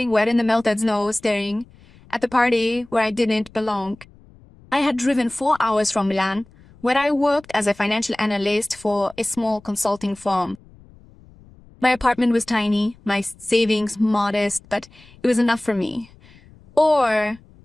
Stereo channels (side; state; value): left; noise; rumble, 25 dB below the sound